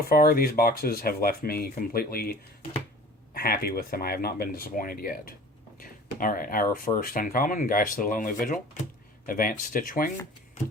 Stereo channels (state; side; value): normal; both; correlation 0.44